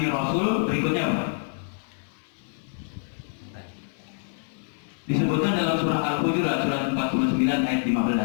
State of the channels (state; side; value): silent; right; 61 dB below the other